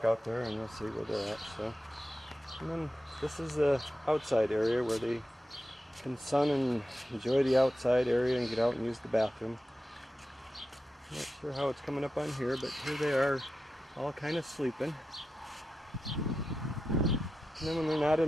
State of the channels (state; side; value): normal; both; correlation 0.91